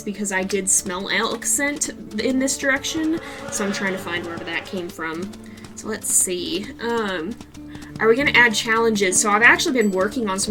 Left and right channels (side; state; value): both; identical; correlation 1.00